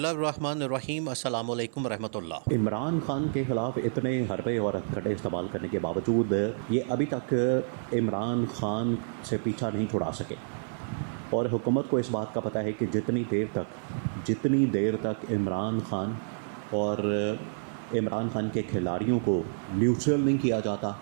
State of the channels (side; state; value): left; silent; 57 dB below the other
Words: अस्सलामु अलैकुम रहमतुल्लाह। इमरान खान के ख़िलाफ़ इतने हरबे और हथकंडे इस्तेमाल करने के बावजूद ये अभी तक इमरान खान से पीछा नहीं छुड़ा सके। और हुकूमत को इस बात का पता है कि जितनी देर तक इमरान खान और इमरान खान के खिलाड़ियों को न्यूट्रल नहीं किया जाता,